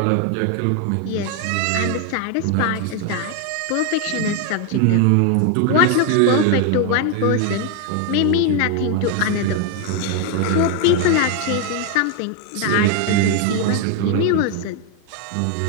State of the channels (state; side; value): different; both; correlation 0.01